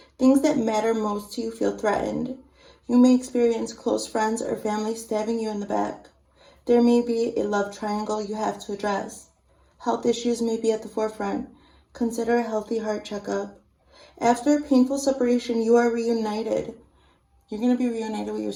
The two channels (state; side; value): identical; both; correlation 1.00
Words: Things that matter most to you feel threatened. You may experience close friends or family stabbing you in the back. There may be a love triangle you have to address. Health issues may be at the forefront. Consider a healthy heart checkup. After a painful separation, you are reunited. You're going to be reunited with